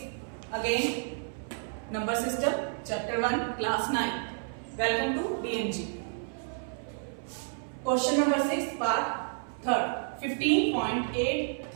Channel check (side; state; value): left; silent; 57 dB below the other